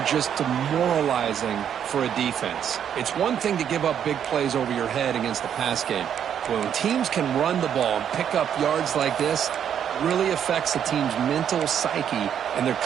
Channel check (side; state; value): left; quieter; 8.9 dB